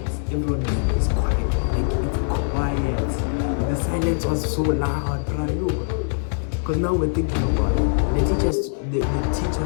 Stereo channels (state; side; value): silent; right; 64 dB below the other